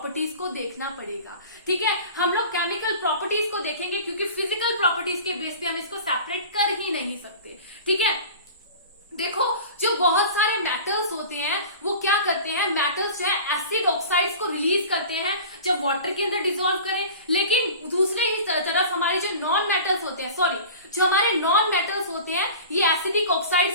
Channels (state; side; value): inverted; both; correlation -0.38